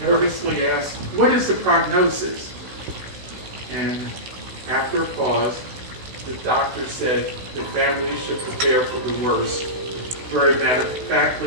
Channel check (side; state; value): left; late; 16 ms